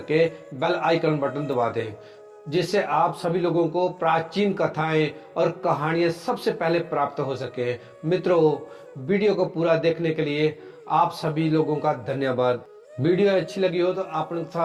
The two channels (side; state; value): both; identical; correlation 1.00